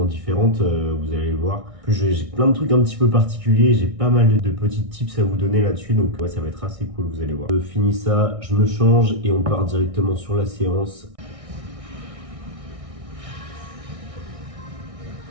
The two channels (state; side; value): late; left; 1.6 ms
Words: différente. Vous allez le voir. En plus, j'ai plein de trucs un petit peu particuliers. J'ai pas mal de petits tips à vous donner là-dessus. Donc, ouais, ça va être assez cool, vous allez voir. Je finis ça, je me change et on part directement sur la séance.